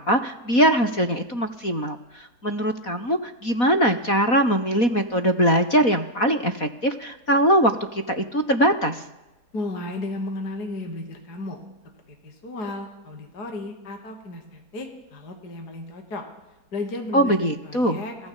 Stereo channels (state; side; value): late; right; 4.1 ms